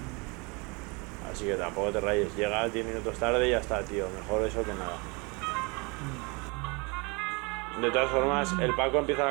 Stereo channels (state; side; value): quieter; left; 29.1 dB